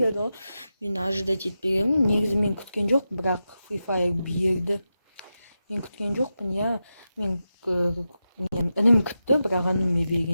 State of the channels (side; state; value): both; inverted; correlation -0.90